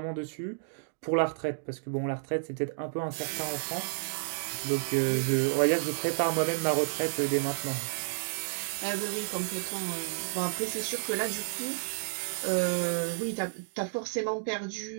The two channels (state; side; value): silent; left; digital silence